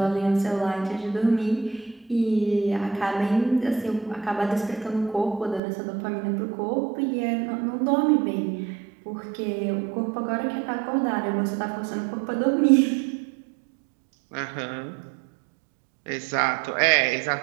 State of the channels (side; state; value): left; drops out; at 5.6 s